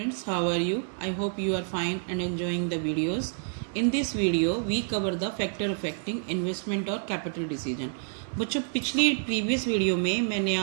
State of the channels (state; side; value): silent; left; 59 dB below the other